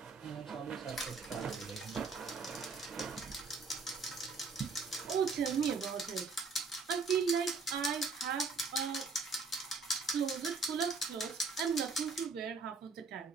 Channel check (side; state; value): left; quieter; 4.4 dB